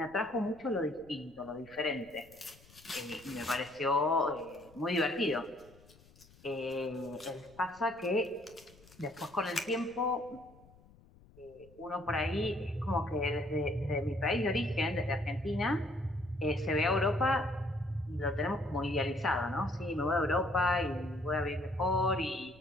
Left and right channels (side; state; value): left; noise; rumble, 25 dB below the sound